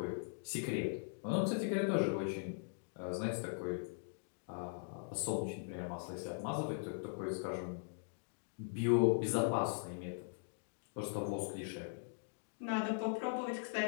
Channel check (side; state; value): right; silent; digital silence